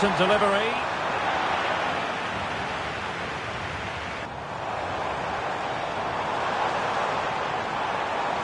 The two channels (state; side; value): identical; both; correlation 1.00